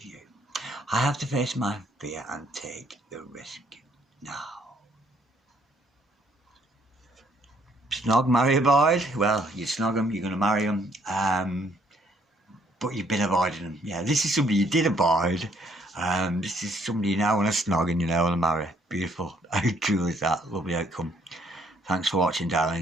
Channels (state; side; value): normal; both; correlation 0.66